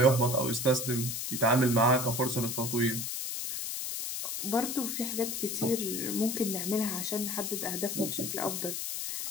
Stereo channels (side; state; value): left; noise; hiss, 3 dB below the sound